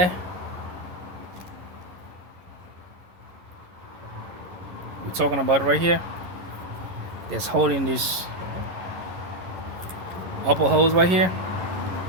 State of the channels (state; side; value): late; left; 11 ms